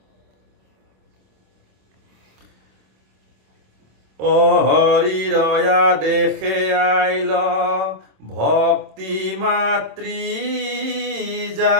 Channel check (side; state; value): left; late; 26 ms